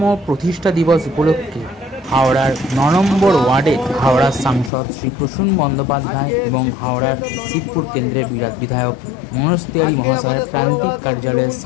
প্রতিষ্ঠা দিবস উপলক্ষে হাওড়ার 9 নম্বর ওয়ার্ডে হাওড়ার সাংসদ শ্রী প্রসূন বন্দ্যোপাধ্যায় এবং হাওড়ার শিবপুর কেন্দ্রের বিধায়ক মনোজ তিওয়ারি মহাশয়ের প্রান্তিক কার্যালয়ের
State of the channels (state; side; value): drops out; right; at 4.7 s